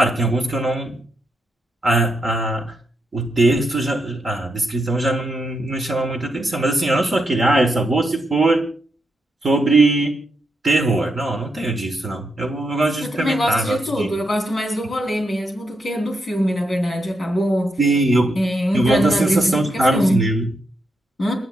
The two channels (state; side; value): normal; both; correlation 0.82